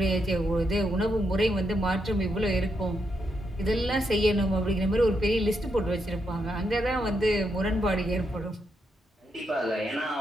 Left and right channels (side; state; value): both; normal; correlation 0.81